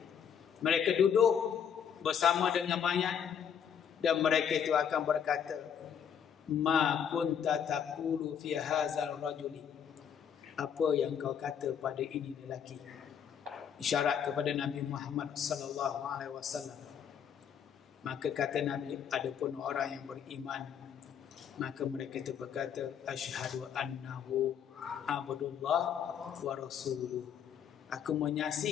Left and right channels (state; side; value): quieter; right; 8.0 dB